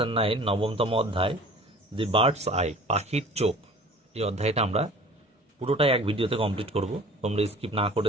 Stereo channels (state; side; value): normal; both; correlation 0.45